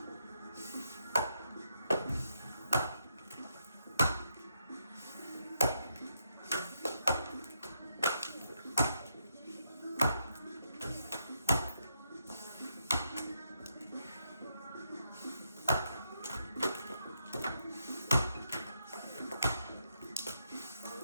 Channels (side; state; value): both; inverted; correlation -0.80